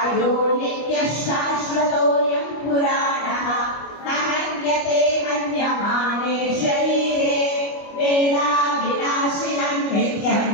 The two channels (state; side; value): late; right; 25 ms